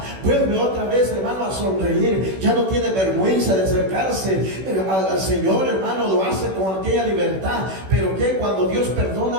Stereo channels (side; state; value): left; late; 16 ms